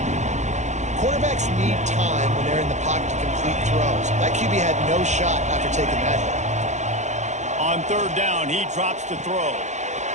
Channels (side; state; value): left; late; 0.34 ms